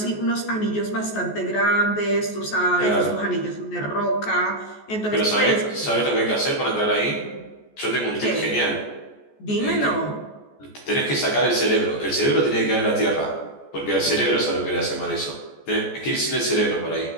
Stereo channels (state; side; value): late; right; 14 ms